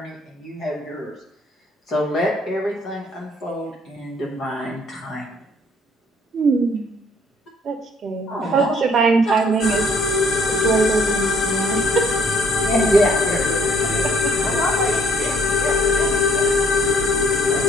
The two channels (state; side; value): normal; both; correlation 0.60